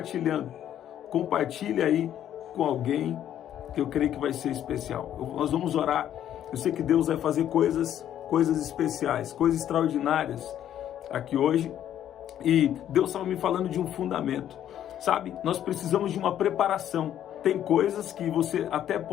Compartilhe aí com alguém que eu creio que vai ser especial. Nós vamos orar. Eu sei que Deus vai fazer coisas especiais, coisas extraordinárias aqui hoje. E Deus estava me falando de um fundamento. Sabe, nós precisamos de uma preparação. Tem coisas que você até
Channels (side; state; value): right; quieter; 10.8 dB